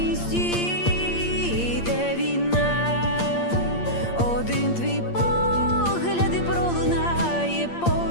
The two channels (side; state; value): right; late; 8.6 ms